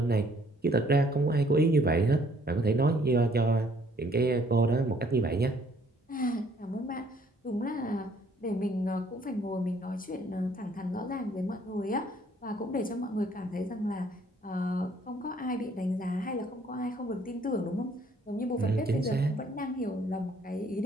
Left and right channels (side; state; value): both; normal; correlation 0.62